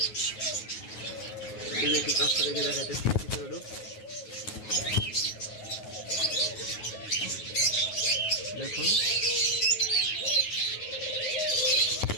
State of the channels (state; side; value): late; right; 9.4 ms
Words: একটু কাছটা দেখে দেখাইতেছি, দেখুন